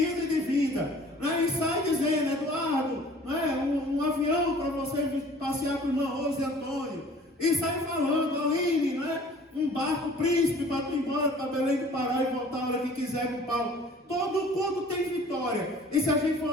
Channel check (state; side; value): normal; both; correlation 0.50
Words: e de vinda. Não é? E sai dizendo, Eduardo, não é? Um avião para você passear com o irmão Rose e Antônio. E sai falando, Aline, não é? Um barco príncipe para tu ir embora para Belém do Pará e voltar a hora que quiser com o Paulo. Todo culto tem vitória. E se a gente